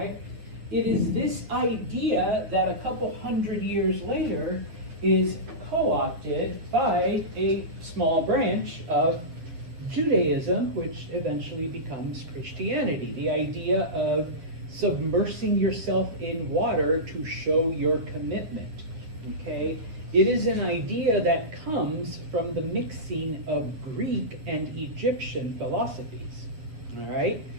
It is this idea that a couple hundred years later is co-opted by a small branch of Judaism, which eventually becomes Christianity. The idea of submersing yourself in water to show your commitment. Okay? It is an idea that comes from the mixing of Greek and Egyptian philosophies. All right?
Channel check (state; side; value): late; left; 9.4 ms